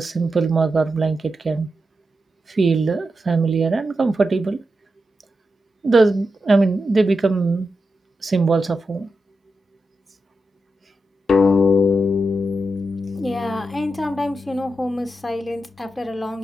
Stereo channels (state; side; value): normal; both; correlation 0.88